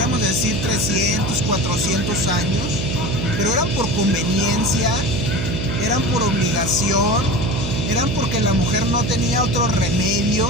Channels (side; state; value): right; noise; hum, 3 dB below the sound